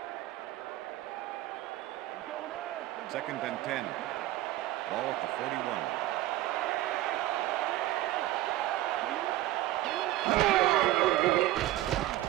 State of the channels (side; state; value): left; quieter; 15.6 dB